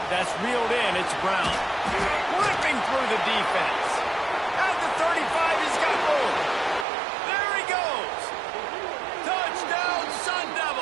That's reeled in. It's Brown. Ripping through the defense. At the 35, he's got room. There he goes. Touchdown, Sun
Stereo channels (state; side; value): drops out; left; at 6.9 s